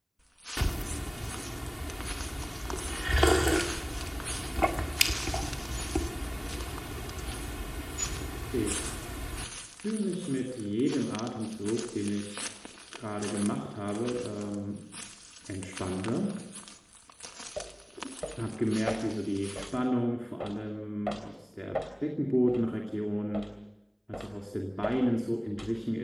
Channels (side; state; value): both; identical; correlation 1.00